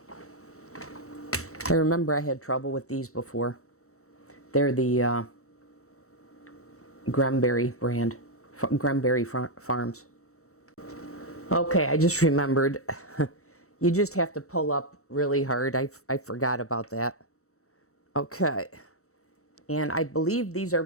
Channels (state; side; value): late; right; 0.64 ms